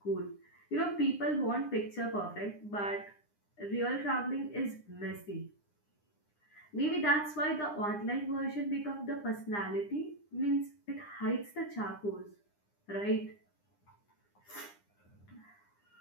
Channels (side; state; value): right; late; 9.8 ms